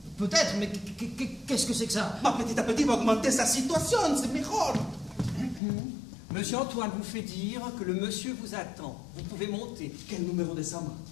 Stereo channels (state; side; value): drops out; right; at 5.6 s